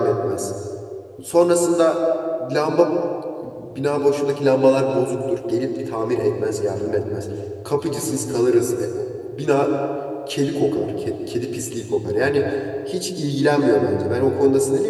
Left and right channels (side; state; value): both; identical; correlation 1.00